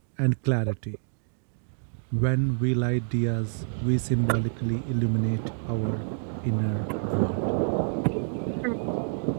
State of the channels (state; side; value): silent; left; digital silence